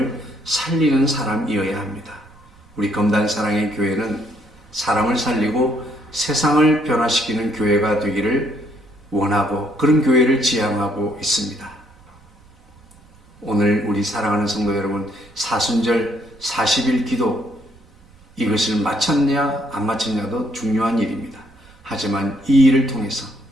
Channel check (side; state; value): right; noise; rumble, 27 dB below the sound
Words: 살리는 사람이어야 합니다. 우리 검단사랑의 교회는 사람을 살리고 세상을 변화시키는 교회가 되기를 원하고 그런 교회를 지향하고 있습니다. 오늘 우리 사랑하는 성도 여러분, 사순절 40일 기도 이것을 마쳤냐 안 마쳤냐도 중요한 일입니다. 하지만 이 일을 통해서